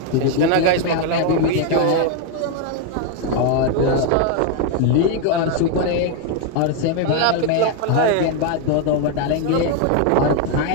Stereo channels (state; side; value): different; both; correlation 0.01